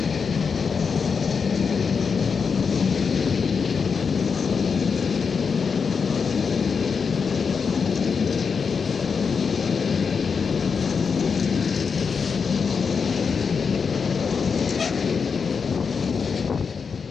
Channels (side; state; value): right; quieter; 5.7 dB